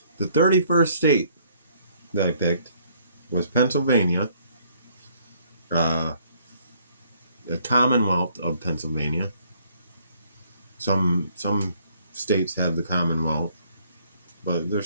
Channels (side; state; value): both; inverted; correlation -0.64